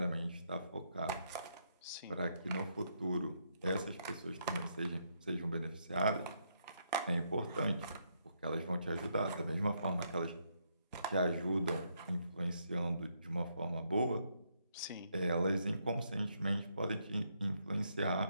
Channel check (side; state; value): both; inverted; correlation -0.76